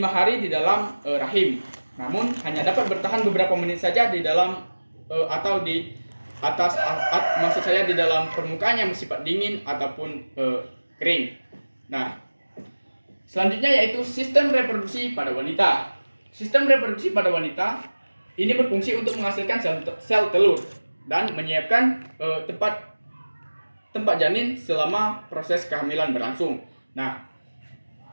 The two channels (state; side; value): inverted; both; correlation -1.00